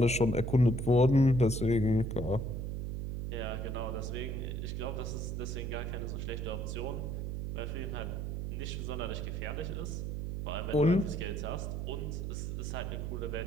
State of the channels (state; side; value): noise; right; hum, 3 dB below the sound